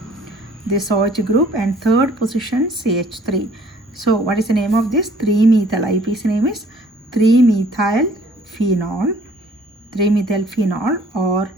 this OH group and third position CH3. So what is the name of this? 3-methyl. IUPAC name is 3-methyl phenol. 3-methyl phenol or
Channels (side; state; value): both; normal; correlation 0.57